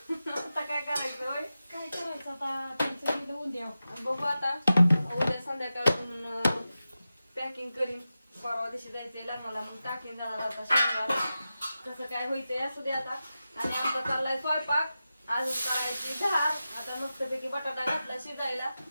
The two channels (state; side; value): inverted; both; correlation -0.93